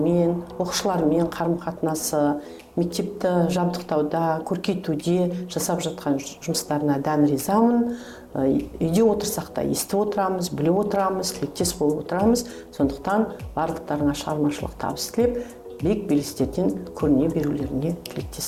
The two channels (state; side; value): identical; both; correlation 1.00